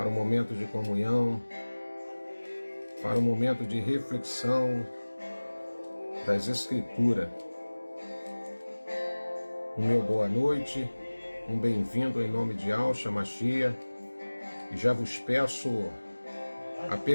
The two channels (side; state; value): both; inverted; correlation -1.00